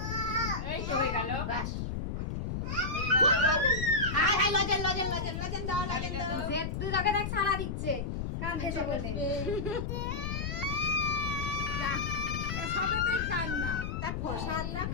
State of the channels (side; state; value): left; noise; rumble, 3 dB below the sound